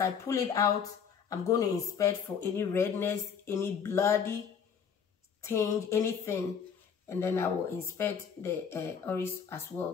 pull it out, I'm going to inspect for any redness, any bloody tinge, anything. And then I will inspect the oris as well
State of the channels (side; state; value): right; quieter; 7.1 dB